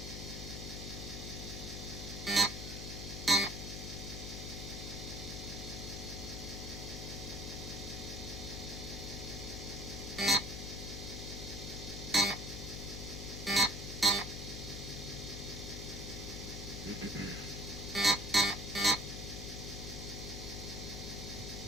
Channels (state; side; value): noise; left; hum, 7 dB below the sound